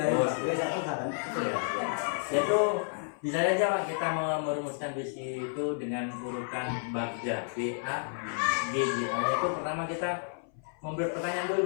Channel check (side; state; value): right; silent; 57 dB below the other